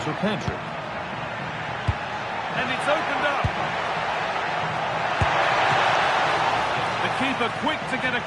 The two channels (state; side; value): identical; both; correlation 1.00